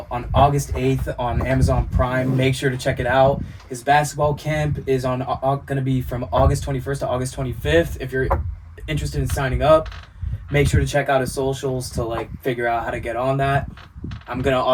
on August 8th on Amazon Prime. Make sure to check it out. His basketball camp is going to be from August 21st to August 25th. If you're interested in signing up, make sure to check out his socials to like figure out how to get on that. I'm going to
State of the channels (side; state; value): both; identical; correlation 1.00